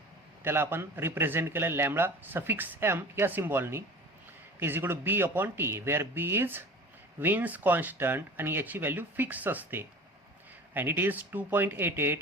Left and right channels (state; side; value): normal; both; correlation 0.38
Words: त्याला आपण रिप्रेझेंट केलं लॅम्बडा सफिक्स एम या सिम्बॉलनी, is equal to B upon T, where B is Wien's constant आणि याची व्हॅल्यू फिक्स असते. And it is